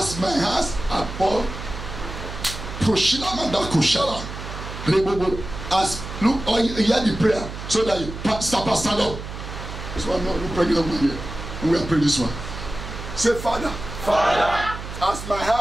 my hands above as look, or you hear the prayer so that you stand up. This one, no pregnant one here. We are praying this one. Say, Father, as my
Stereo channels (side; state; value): right; noise; hum, 9 dB below the sound